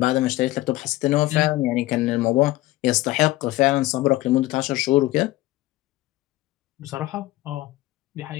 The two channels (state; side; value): quieter; right; 17.5 dB